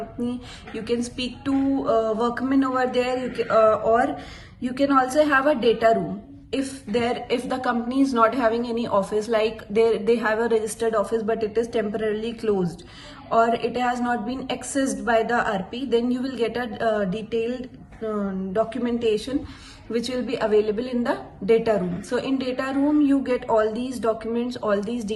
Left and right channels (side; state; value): both; identical; correlation 1.00